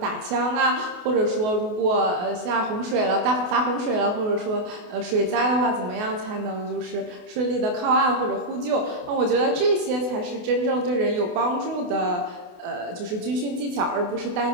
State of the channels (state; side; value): late; left; 28 ms